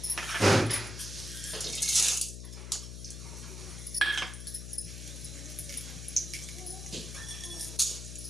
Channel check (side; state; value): left; noise; hum, 9 dB below the sound